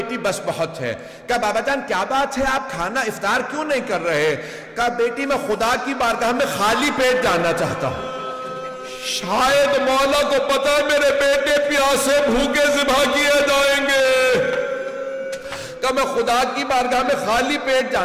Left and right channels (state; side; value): identical; both; correlation 1.00